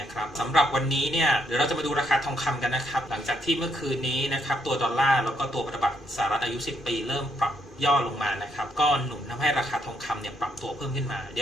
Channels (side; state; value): both; normal; correlation 0.74